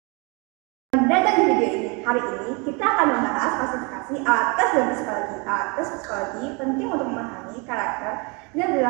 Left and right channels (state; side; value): quieter; left; 30.6 dB